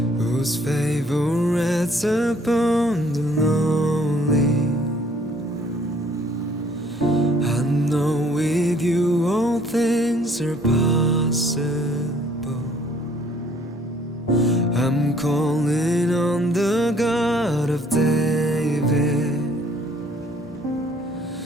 whose favor rests upon the lonely. I know with you all things are possible. I'm calling on the God of David,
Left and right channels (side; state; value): both; normal; correlation 0.60